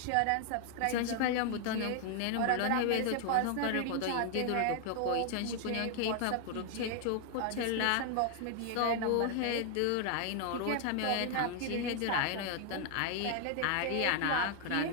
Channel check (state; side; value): different; both; correlation 0.00